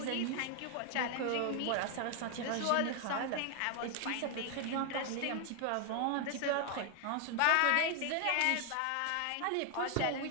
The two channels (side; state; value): both; different; correlation 0.00